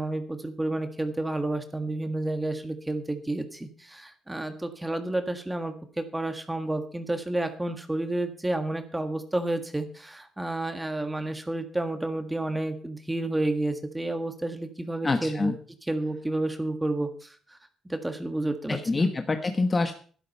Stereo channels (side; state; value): both; normal; correlation 0.93